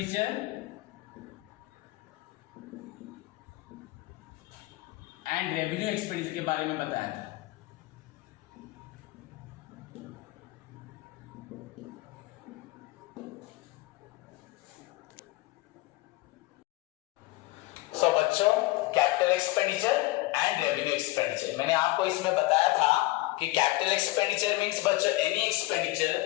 and revenue expenditure के बारे में बताया था। सो बच्चों, capital expenditure and revenue expenditure, मैंने आपको इसमें बताया था कि कैपिटल एक्सपेंडिचर मींस बच्चों any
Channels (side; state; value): right; quieter; 19.6 dB